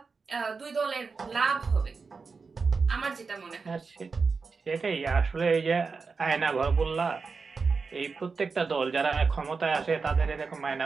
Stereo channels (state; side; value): quieter; left; 4.7 dB